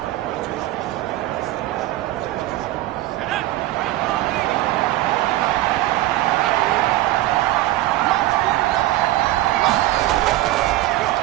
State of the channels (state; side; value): quieter; left; 16.5 dB